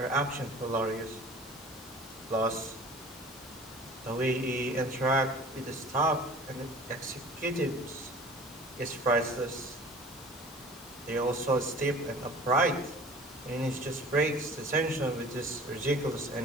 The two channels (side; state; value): both; normal; correlation 0.45